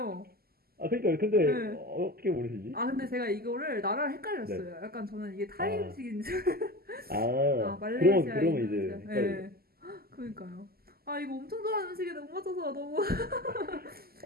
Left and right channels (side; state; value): left; late; 0.45 ms